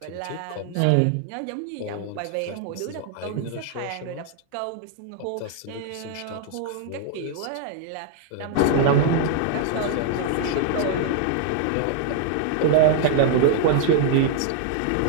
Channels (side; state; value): both; different; correlation 0.00